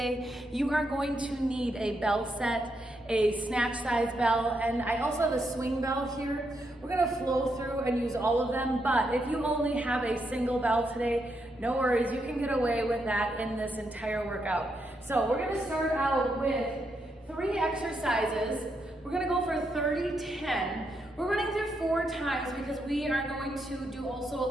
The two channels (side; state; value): both; normal; correlation 0.81